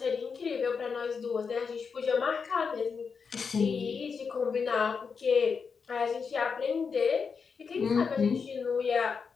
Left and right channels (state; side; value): quieter; right; 5.6 dB